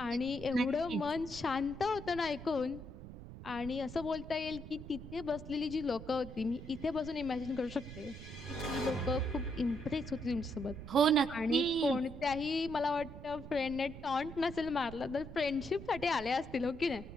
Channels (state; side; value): noise; right; rumble, 12 dB below the sound